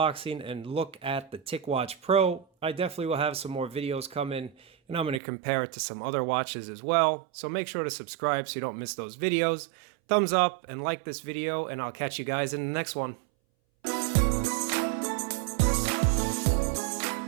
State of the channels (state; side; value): drops out; left; at 5.2 s